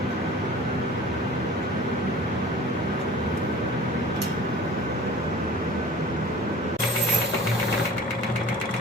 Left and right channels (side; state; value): both; normal; correlation 0.43